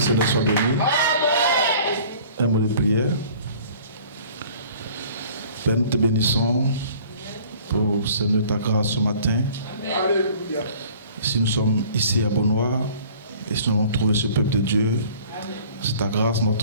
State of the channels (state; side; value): inverted; both; correlation -0.50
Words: Seigneur soit béni. Un mot de prière. Père, nous te bénissons pour Seigneur ta grâce ce matin. Alléluia. Si nous sommes ici à Beaunois et si nous avons trouvé ce peuple de Dieu, c'est ta grâce,